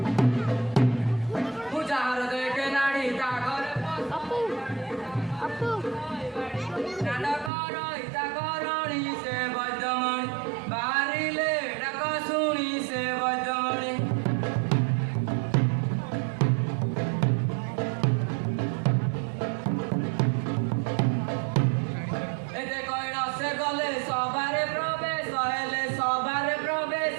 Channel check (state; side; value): drops out; left; at 7.5 s